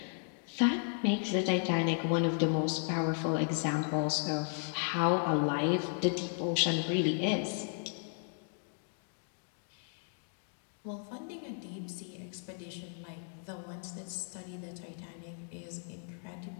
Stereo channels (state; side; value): silent; right; 54 dB below the other